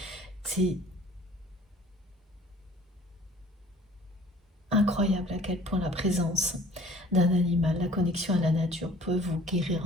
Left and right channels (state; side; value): normal; both; correlation 0.51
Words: C'est incroyable à quel point la présence d'un animal, la connexion à la nature peut vous guérir